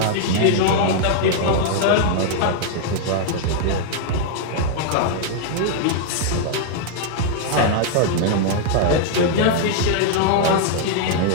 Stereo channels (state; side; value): different; both; correlation -0.01